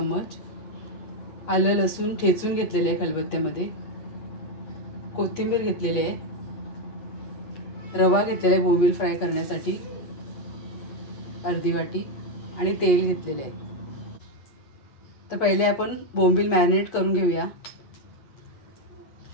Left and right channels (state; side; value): late; right; 8.4 ms